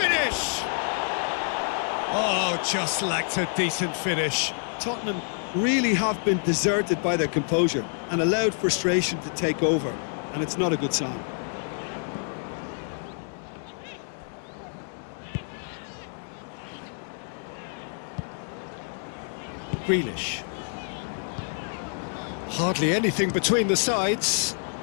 Oh, just lacked a decent finish. Tottenham really have been deserted by their composure and allowed frustration to take over, and it's not a good sign. Grealish. Hardly anything between the sides,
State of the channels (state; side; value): silent; right; 59 dB below the other